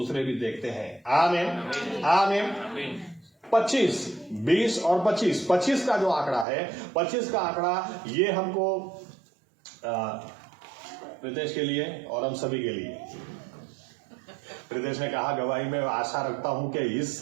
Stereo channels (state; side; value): drops out; left; at 6.5 s